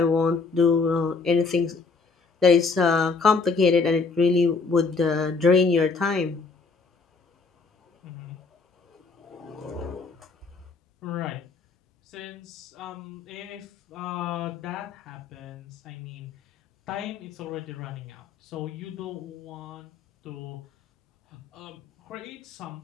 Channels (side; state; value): right; quieter; 4.5 dB